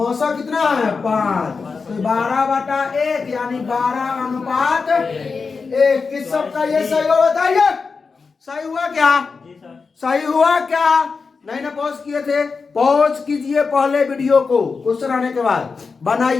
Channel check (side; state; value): right; quieter; 4.8 dB